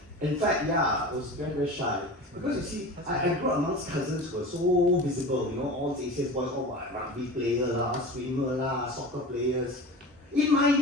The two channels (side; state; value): both; normal; correlation 0.33